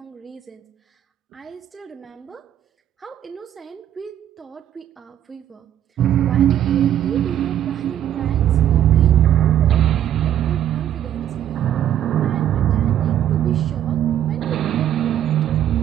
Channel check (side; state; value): left; quieter; 11.0 dB